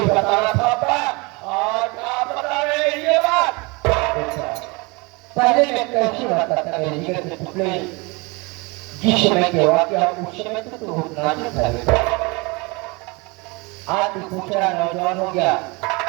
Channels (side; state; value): left; quieter; 27.2 dB